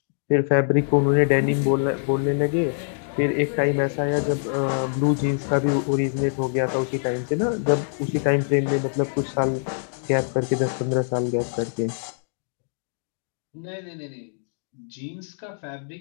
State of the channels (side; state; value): right; silent; digital silence